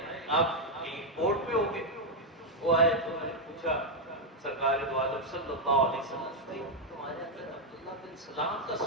آپ ایئرپورٹ پہ ہوں گے، وہ آئے تو میں نے پوچھا سرکار دو عالم صلی اللہ علیہ وسلم سے تمہارے اندر عبداللہ بن سلام کا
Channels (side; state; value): both; normal; correlation 0.01